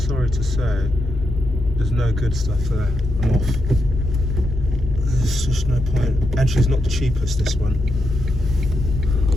to say there's no good stuff there. I'm off. There's just no point. And she's not the cheapest, this one.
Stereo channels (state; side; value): normal; both; correlation 0.84